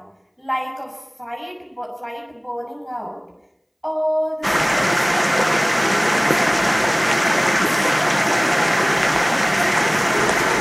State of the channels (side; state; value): both; identical; correlation 1.00